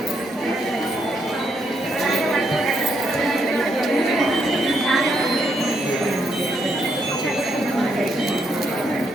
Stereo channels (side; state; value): both; normal; correlation 0.76